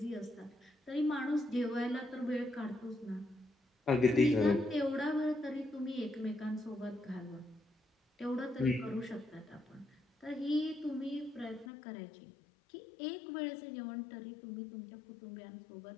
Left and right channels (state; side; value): drops out; right; at 11.7 s